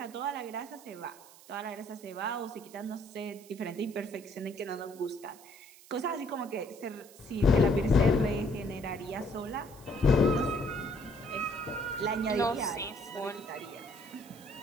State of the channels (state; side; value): noise; right; hiss, 22 dB below the sound